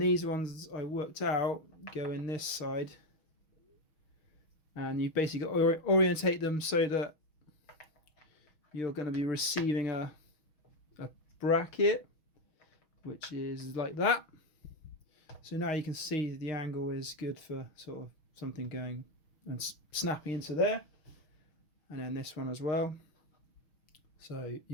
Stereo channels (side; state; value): right; late; 6.3 ms